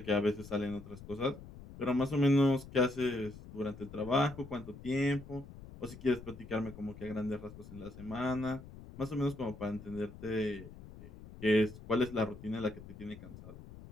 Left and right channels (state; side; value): noise; left; rumble, 15 dB below the sound